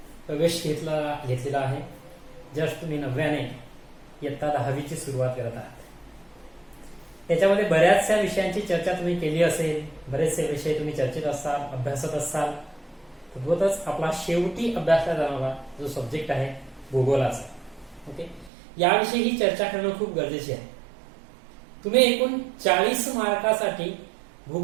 प्रवेश घेतलेला आहे. जस्ट तुम्ही 9व्याने इयत्ता 10वीची सुरुवात करत आहात. त्याच्यामध्ये बऱ्याचशा विषयांची चर्चा तुम्ही केली असेल, बरेचसे विषय तुम्ही चर्चेत असाल, अभ्यासत असाल. तद्वतच आपला शेवटी अभ्यासला जाणारा जो सब्जेक्ट आहे भूगोलाचा. ओके, याविषयी ही चर्चा करणं खूप गरजेचे आहे. तुम्ही एकूण 40 मार्कासाठी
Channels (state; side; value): drops out; left; at 18.5 s